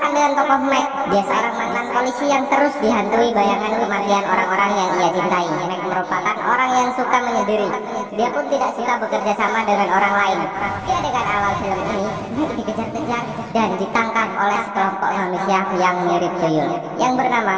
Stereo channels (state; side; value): identical; both; correlation 1.00